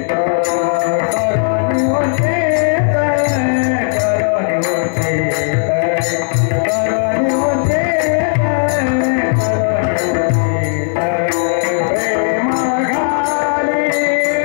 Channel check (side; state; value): right; silent; 68 dB below the other